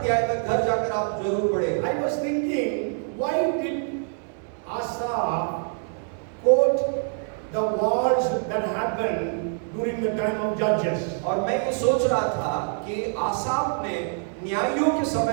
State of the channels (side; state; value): left; silent; 56 dB below the other